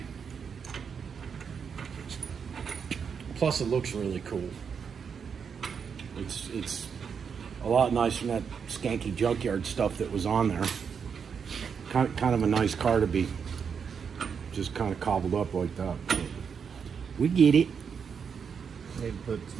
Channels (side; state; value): left; quieter; 6.6 dB